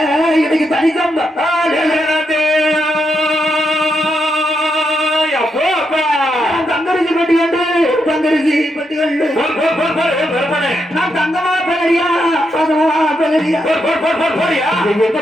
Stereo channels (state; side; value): normal; both; correlation 0.82